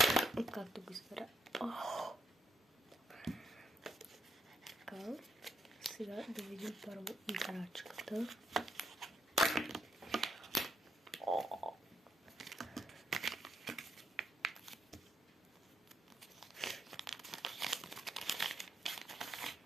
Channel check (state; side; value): normal; both; correlation 0.78